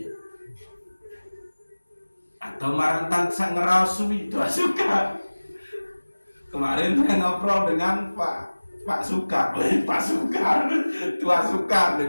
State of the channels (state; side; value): inverted; both; correlation -1.00